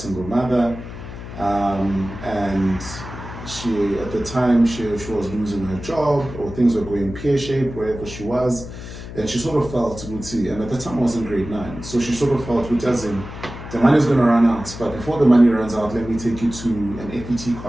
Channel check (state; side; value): noise; left; hum, 11 dB below the sound